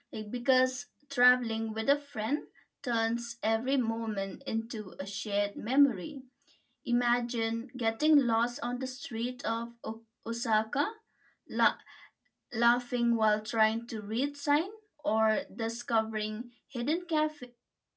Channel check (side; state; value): both; identical; correlation 1.00